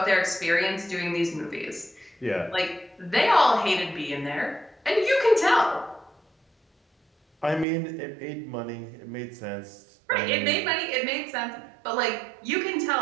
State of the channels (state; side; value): drops out; left; at 7.7 s